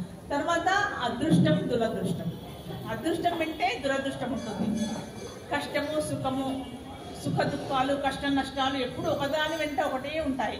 తర్వాత అదృష్టం, దురదృష్టం. అదృష్టం అంటే దురదృష్టం ఉంటుంది. కష్టము, సుఖము, సుఖ దుఃఖాలు, కష్ట నష్టాలు ఎప్పుడు ఒకదాని వెంట ఒకటే ఉంటాయి,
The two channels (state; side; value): identical; both; correlation 1.00